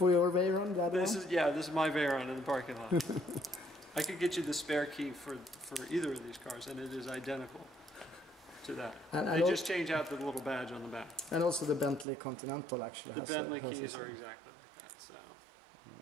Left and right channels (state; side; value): drops out; left; at 12.1 s